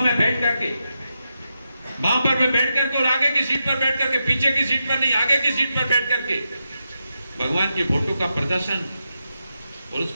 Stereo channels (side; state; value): both; inverted; correlation -0.87